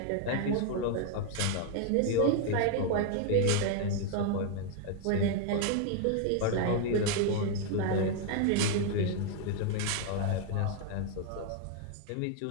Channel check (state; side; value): different; both; correlation 0.00